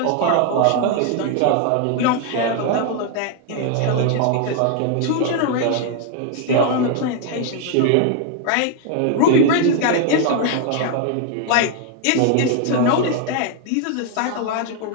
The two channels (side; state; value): both; different; correlation 0.00